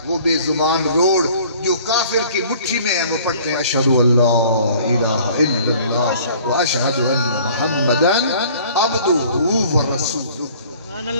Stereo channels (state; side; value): inverted; both; correlation -0.52